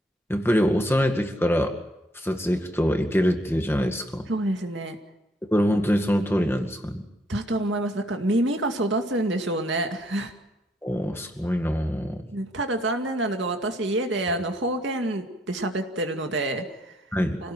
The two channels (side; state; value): both; normal; correlation 0.69